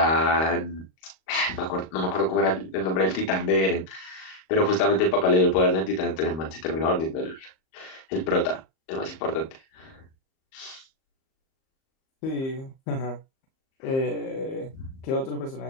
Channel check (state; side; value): late; right; 38 ms